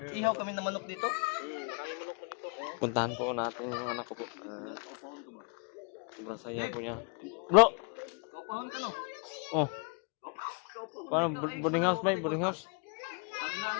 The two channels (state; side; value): quieter; right; 36.0 dB